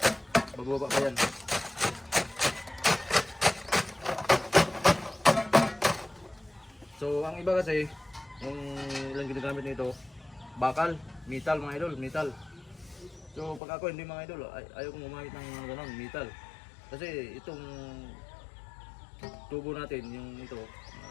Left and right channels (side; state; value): right; drops out; at 13.6 s